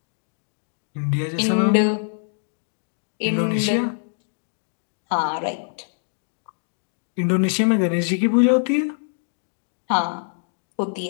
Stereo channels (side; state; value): right; silent; digital silence